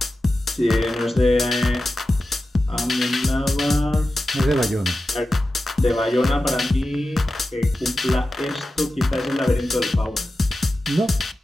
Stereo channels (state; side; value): normal; both; correlation 0.93